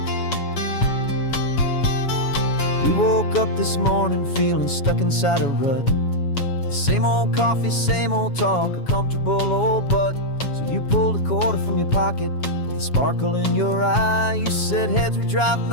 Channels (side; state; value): right; late; 7.2 ms